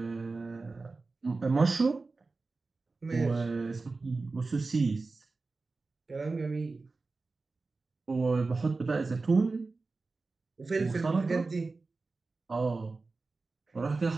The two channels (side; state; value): left; quieter; 3.8 dB